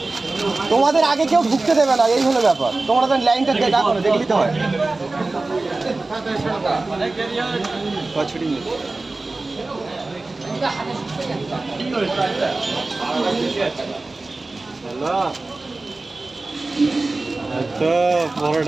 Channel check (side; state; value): left; quieter; 3.3 dB